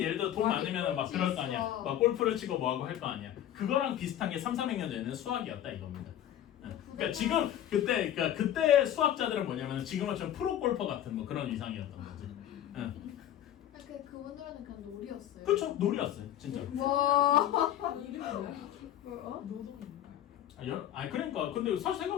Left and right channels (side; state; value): right; quieter; 11.5 dB